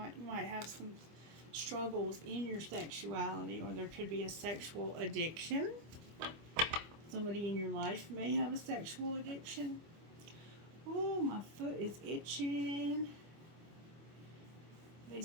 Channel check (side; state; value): left; late; 25 ms